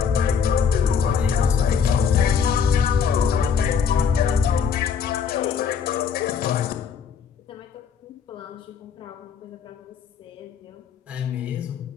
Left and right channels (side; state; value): right; quieter; 6.8 dB